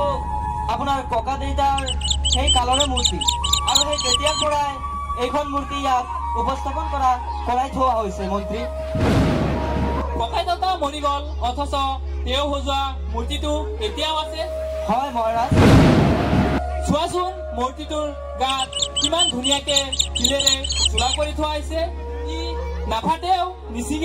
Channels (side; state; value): both; identical; correlation 1.00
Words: আপোনাৰ ককা দেউতাৰ সেই কালৰে মূৰ্তি আৰু সেই তেতিয়াৰ পৰাই এইখন মূৰ্তি ইয়াত উপস্থাপন কৰাই থোৱা হৈছে মন্ত্ৰী। ককাই দেউতা মৰি গল অথচ তেওঁ সজোৱা মূৰ্তিটো এতিয়াও আছে? হয় মহাৰাজ। চোৱাচোন মূৰ্তিটোৰ গাত কিমান ধুনীয়াকে শিলেৰে চোলা কৰি থোৱা হৈছে। ই নাফাটেও